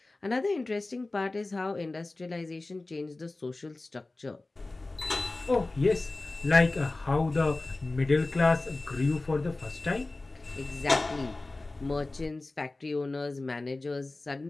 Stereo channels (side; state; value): right; quieter; 3.1 dB